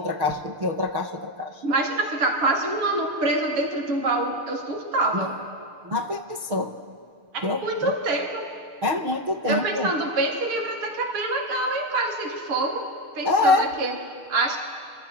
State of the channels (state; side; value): late; left; 6.6 ms